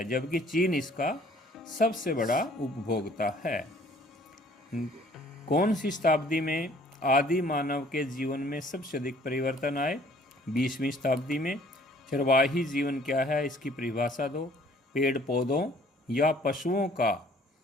जबकि चीन इसका सबसे बड़ा उपभोक्ता है। कौन सी शताब्दी में आदि मानव के जीवन में सबसे अधिक परिवर्तन आए? 20वीं शताब्दी में। चरवाही जीवन क्या है? इसकी परिभाषा दो। पेड़ पौधों या पशुओं का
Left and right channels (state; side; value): normal; both; correlation 0.56